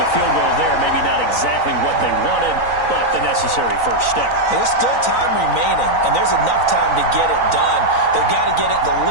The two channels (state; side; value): late; right; 3.9 ms